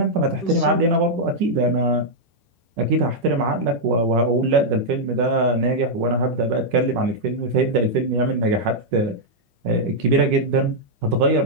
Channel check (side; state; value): left; late; 10 ms